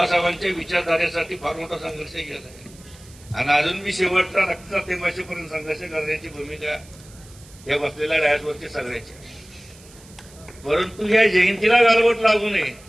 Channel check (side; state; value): right; noise; hiss, 23 dB below the sound